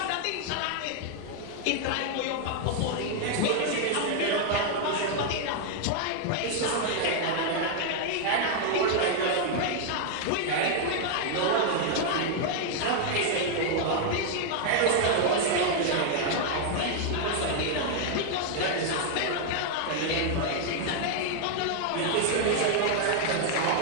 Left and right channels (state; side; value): different; both; correlation 0.00